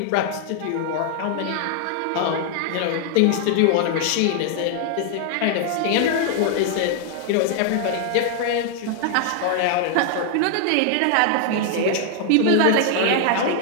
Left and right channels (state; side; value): different; both; correlation 0.00